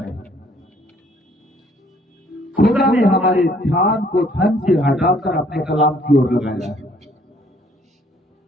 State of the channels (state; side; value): normal; both; correlation 0.62